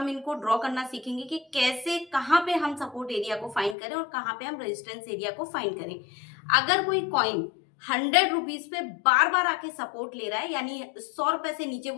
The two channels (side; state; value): right; drops out; at 3.8 s